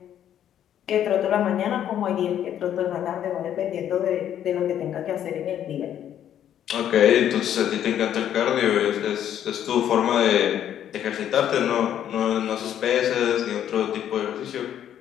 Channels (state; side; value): quieter; right; 10.4 dB